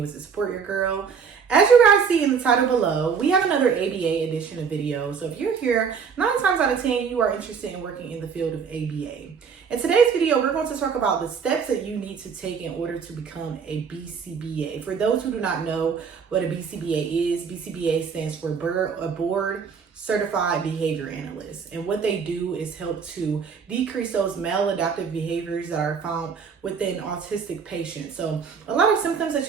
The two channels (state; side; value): quieter; left; 6.2 dB